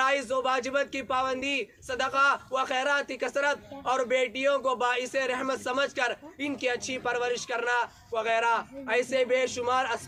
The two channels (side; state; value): both; identical; correlation 1.00